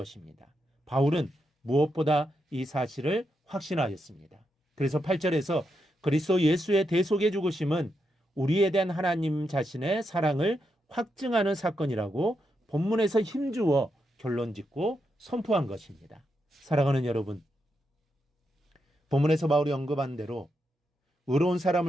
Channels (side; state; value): both; normal; correlation 0.83